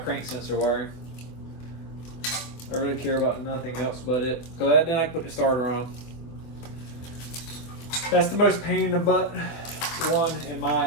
sensor wiring. I really care about nothing else but it. So then I can put the starter on. That's the most pain in the butt one in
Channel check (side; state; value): right; late; 25 ms